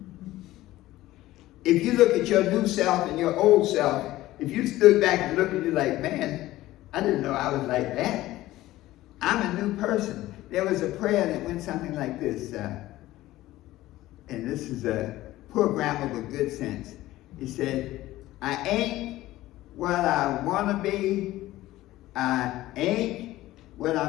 If you look at your new self and your old self, if you stood back and looked at you like, man, I didn't know I was like that. I'm a new person. There was a prayer that went something like this, and this is a poor grammar with good sense. He said, I ain't what I want to be. I ain't what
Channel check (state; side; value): quieter; right; 16.2 dB